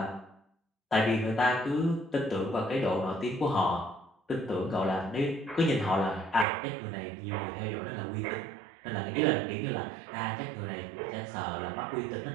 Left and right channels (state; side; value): drops out; left; at 6.5 s